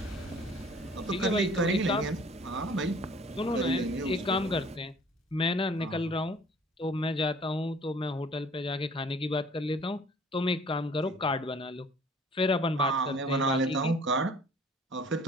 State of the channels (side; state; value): both; normal; correlation 0.52